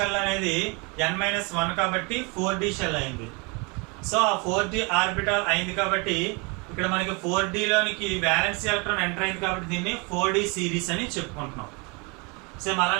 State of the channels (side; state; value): left; quieter; 30.2 dB